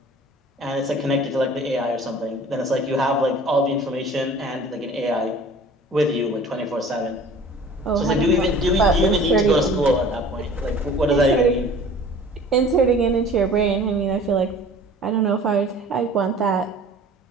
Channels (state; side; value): normal; both; correlation 0.46